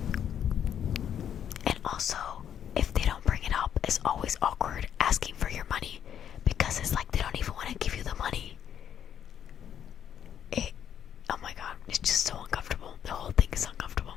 And also, if they don't bring it up, it's always awkward asking for your money because it's like they don't even want to give you the money. Oh my god, it's just so uncomfortable. The whole thing is uncomfortable.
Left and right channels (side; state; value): right; quieter; 9.3 dB